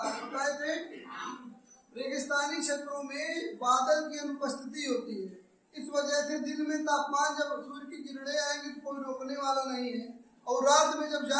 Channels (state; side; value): identical; both; correlation 1.00